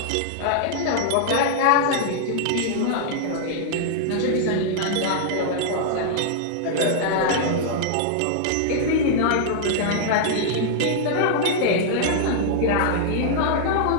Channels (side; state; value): both; different; correlation -0.01